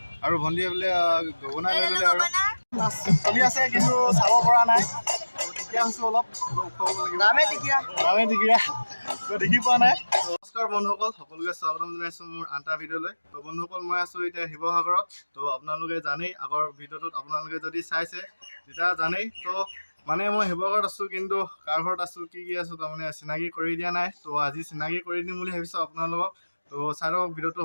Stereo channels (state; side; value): inverted; both; correlation -1.00